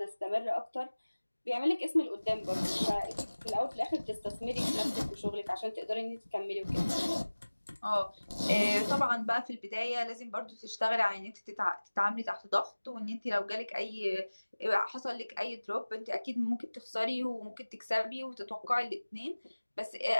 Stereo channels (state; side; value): inverted; both; correlation -1.00